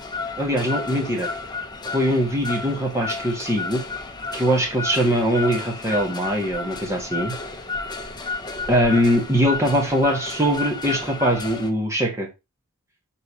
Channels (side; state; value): both; normal; correlation 0.47